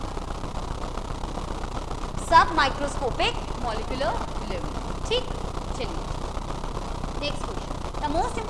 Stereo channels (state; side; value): identical; both; correlation 1.00